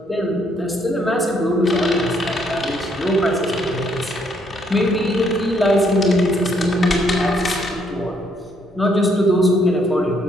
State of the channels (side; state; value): both; normal; correlation 0.70